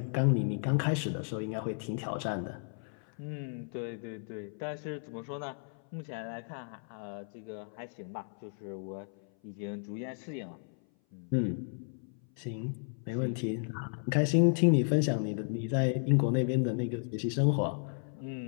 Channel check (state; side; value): silent; right; 55 dB below the other